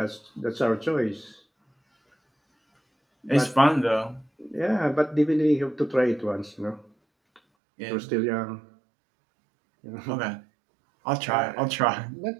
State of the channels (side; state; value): left; drops out; at 7.4 s